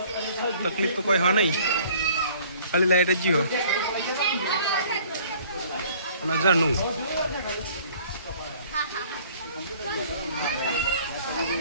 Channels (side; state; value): both; inverted; correlation -0.54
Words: તકલીફ તો કોઈ હા નહીં, ખાલી લાઈટ જ જીવો અને ઝરણું.